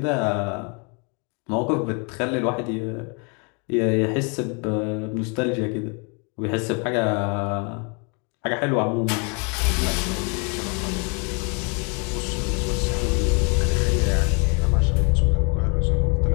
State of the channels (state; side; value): quieter; right; 34.9 dB